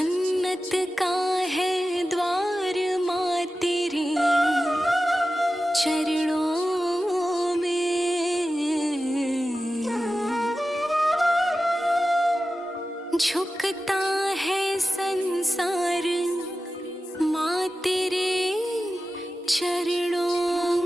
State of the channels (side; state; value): both; normal; correlation 0.94